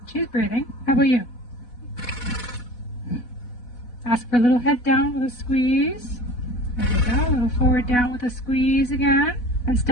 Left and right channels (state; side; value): late; right; 4.1 ms